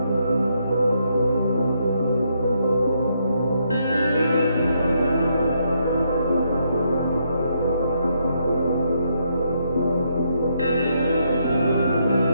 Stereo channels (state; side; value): inverted; both; correlation -0.76